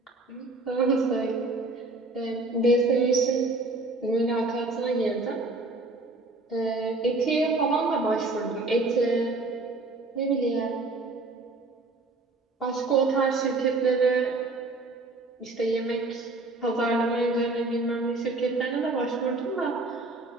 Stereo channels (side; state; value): left; quieter; 3.2 dB